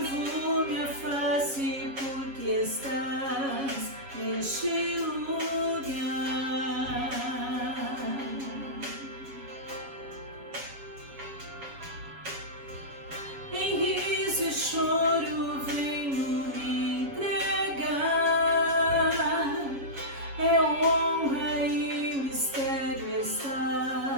minha face porque estás neste lugar. Em riso e choro venho me entregar, é honra e mistério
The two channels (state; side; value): late; left; 7.3 ms